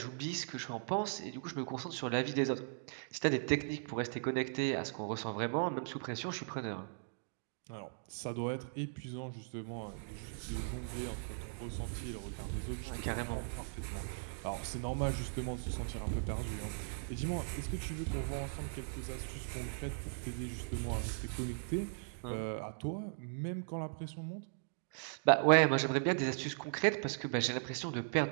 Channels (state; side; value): silent; left; digital silence